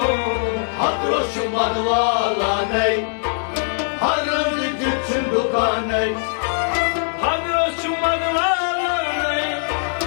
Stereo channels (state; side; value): silent; right; digital silence